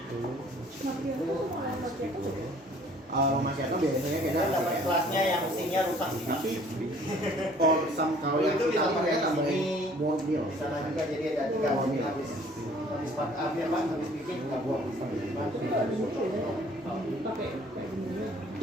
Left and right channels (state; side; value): normal; both; correlation 0.56